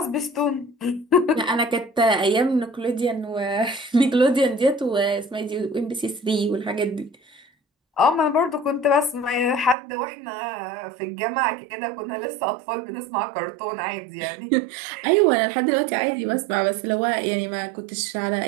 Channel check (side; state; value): left; drops out; at 9.8 s